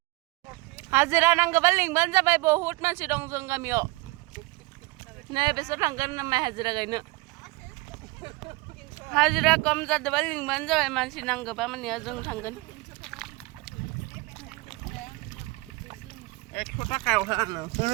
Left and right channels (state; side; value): quieter; left; 23.4 dB